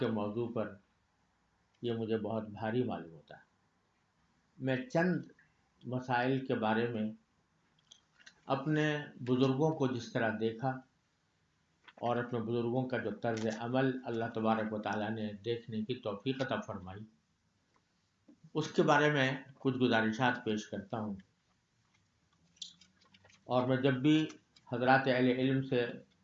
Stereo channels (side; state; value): both; identical; correlation 1.00